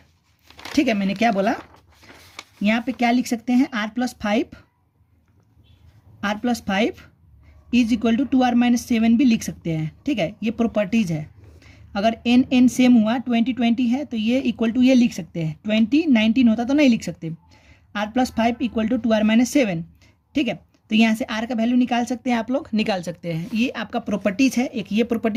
ठीक है, मैंने क्या बोला? यहाँ पे क्या लिख सकते हैं? R plus 5 is equal to 2R minus 7 भी लिख सकते हैं। ठीक है, ये प्रॉपर्टीज है। अगर n सेम हुआ, 20 है तो ये इक्वल टू ये लिख सकते हैं। 19 होता तो नहीं लिख सकते। R plus 5 equal to 2R minus 7। ठीक है, तो यहाँ से R का वैल्यू निकाल सकते हैं, आप लोग निकाल सकते हैं। ये आपका प्रॉपर्टीज है। एक ये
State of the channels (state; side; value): identical; both; correlation 1.00